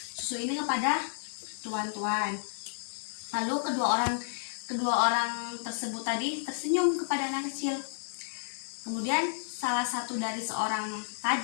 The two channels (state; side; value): silent; right; digital silence